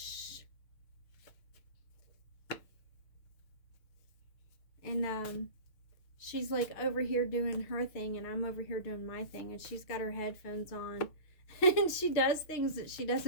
And she's like over here doing her thing, and I'm over here doing my thing, and she's got her headphones on, and she does things that she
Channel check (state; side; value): late; right; 6.4 ms